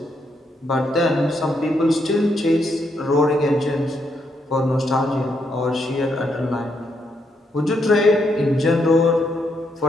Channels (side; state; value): both; normal; correlation 0.77